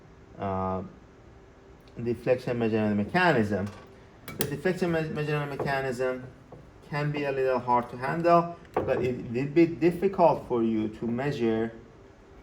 deflection measurement mechanism. The deflection measurement mechanism can be a little hard to handle, but it will be difficult for you to measure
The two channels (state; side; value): identical; both; correlation 1.00